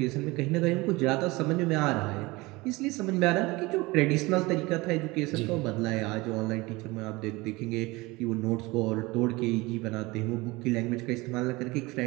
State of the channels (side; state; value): left; quieter; 22.5 dB